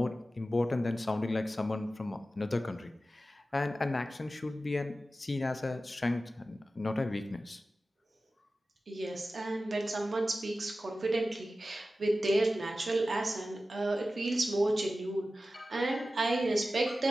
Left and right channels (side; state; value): both; normal; correlation 0.94